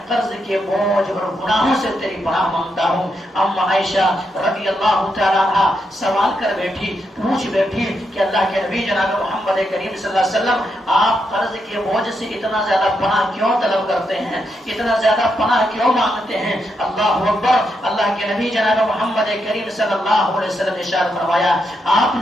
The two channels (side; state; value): both; normal; correlation 0.82